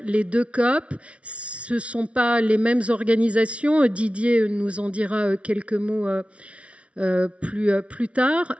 2 COP? Ce ne sont pas les mêmes organisations. Didier nous en dira quelques mots plus tard.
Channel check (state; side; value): late; left; 0.062 ms